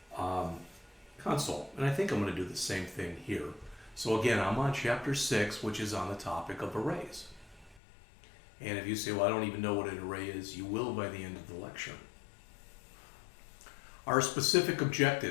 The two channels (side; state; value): right; drops out; at 7.8 s